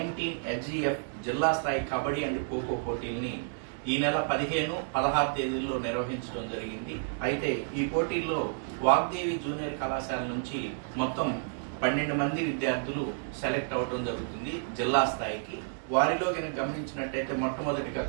హెచ్జిఎఫ్ జిల్లా స్థాయి కబడ్డీ అండ్ ఖోఖో పోటీల్ని ఈ నెల 15, 16 తేదీల్లో నిర్వహించడం జరిగింది. అయితే ఈ పోటీల్లో వాగ్దేవి జూనియర్ కళాశాల నుంచి మొత్తం 12 మంది విద్యార్థులు సెలెక్ట్ అవడం జరుగుతుంది జిల్లా స్థాయికి. వారిలో కనుక గమనించినట్టయితే మొట్టమొదటిగా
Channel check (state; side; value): silent; left; digital silence